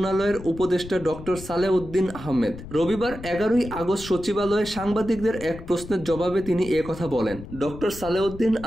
উপদেষ্টা ডক্টর সালেউদ্দিন আহমেদ। রবিবার 11ই আগস্ট সচিবালয়ে সাংবাদিকদের এক প্রশ্নের জবাবে তিনি কথা বলেন। ডক্টর সালেউদ্দিন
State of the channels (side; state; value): left; noise; rumble, 13 dB below the sound